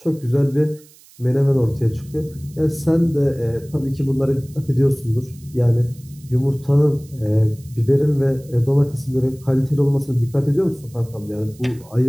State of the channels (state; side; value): noise; right; hiss, 26 dB below the sound